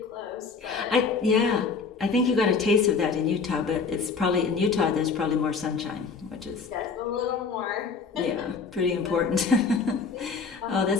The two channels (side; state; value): right; quieter; 5.0 dB